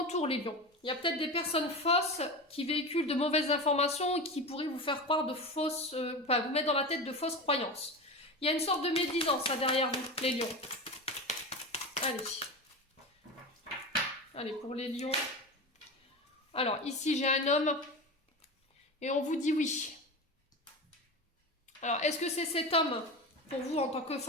les lions. Il y a peut-être des personnes fausses qui véhiculent de mauvaises informations et qui pourraient vous faire croire de fausses... vous mettre dans la tête de fausses croyances. Il y a une sorte de médisance là derrière vous, les lions. Allez. Allez, pour les lions. Alors, ici, j'ai un homme. Et on vous dit oui. Alors, est-ce que c'est cet homme, pour vous, en tant que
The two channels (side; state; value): both; normal; correlation 0.25